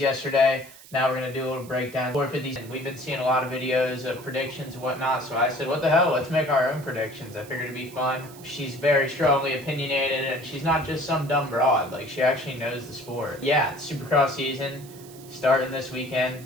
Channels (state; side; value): noise; right; hiss, 20 dB below the sound